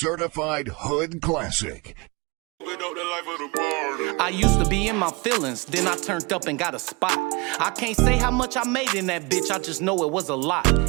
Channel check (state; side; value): quieter; left; 27.2 dB